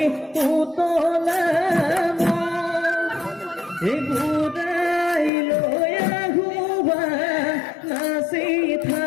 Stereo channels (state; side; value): drops out; right; at 5.3 s